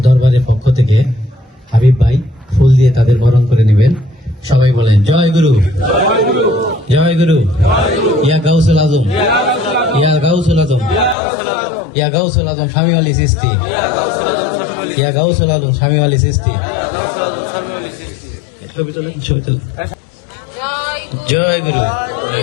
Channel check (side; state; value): right; drops out; at 11.2 s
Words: দরবারের পক্ষ থেকে হাবিব ভাই ফুল দিয়ে তাদের বরণ করে নেবেন। সবাই বলেন জয় গুরু, জয় গুরু, ইয়া গাউসুল আজম, ইয়া গাউসুল আজম, ইয়া গাউসুল আজম স্বামী আলী চিশতি, ইয়া গাউসুল আজম স্বামী আলী চিশতি। জয় গুরু,